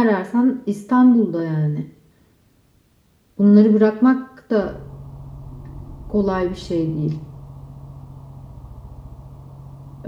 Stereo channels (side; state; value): both; identical; correlation 1.00